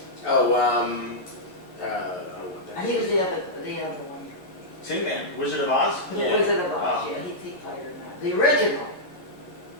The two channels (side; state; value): right; late; 11 ms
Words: Oh, what And he was the other one. Tin Man, Wizard of Oz? Yeah. Wizard of Oz, Oh. yeah, he played in that. The original,